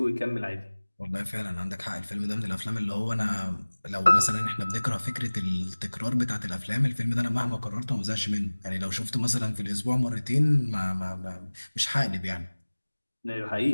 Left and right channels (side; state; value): both; inverted; correlation -1.00